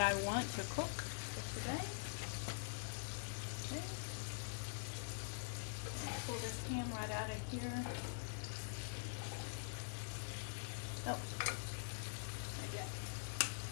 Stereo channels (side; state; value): right; silent; digital silence